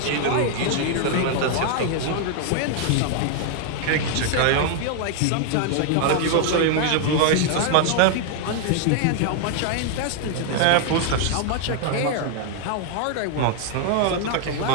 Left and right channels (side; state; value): both; different; correlation 0.00